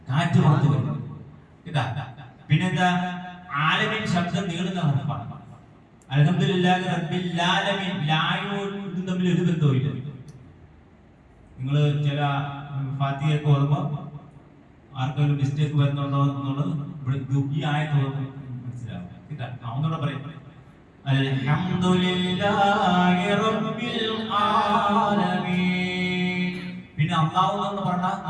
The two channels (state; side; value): identical; both; correlation 1.00